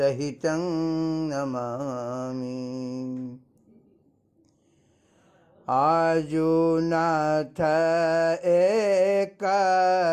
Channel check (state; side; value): identical; both; correlation 1.00